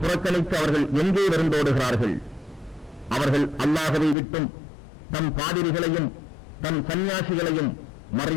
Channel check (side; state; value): right; drops out; at 4.2 s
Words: புறக்கணித்து அவர்கள் எங்கே வருந்தோடுகிறார்கள். அவர்கள் அல்லாஹ்வை விட்டும் தம் பாதிரிகளையும் தம் சன்னியாசிகளையும்